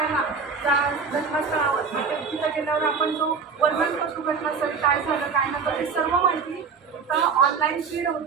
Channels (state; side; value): quieter; left; 5.5 dB